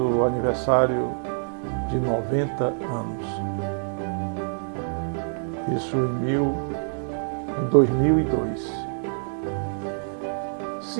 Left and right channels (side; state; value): left; silent; digital silence